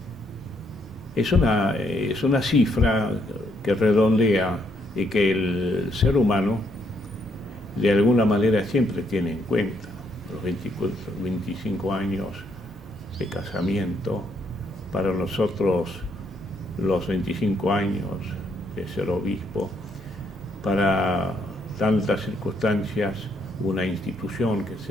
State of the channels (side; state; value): both; normal; correlation 0.72